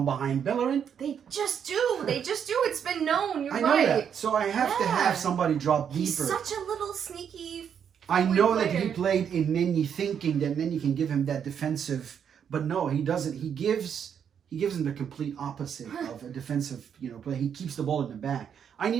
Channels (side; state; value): left; quieter; 8.0 dB